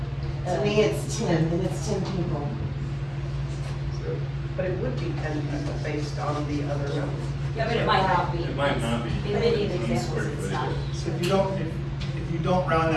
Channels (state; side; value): identical; both; correlation 1.00